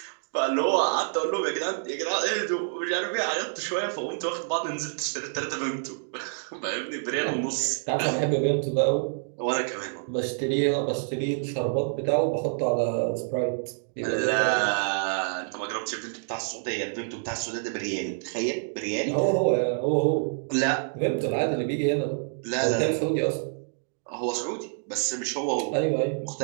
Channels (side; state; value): left; silent; digital silence